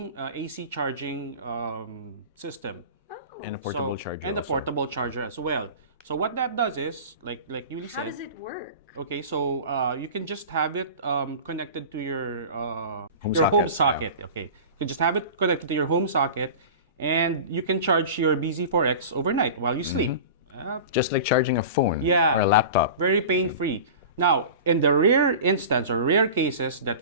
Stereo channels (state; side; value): inverted; both; correlation -0.34